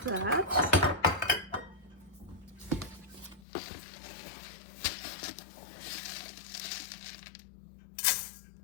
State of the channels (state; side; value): drops out; right; at 3.4 s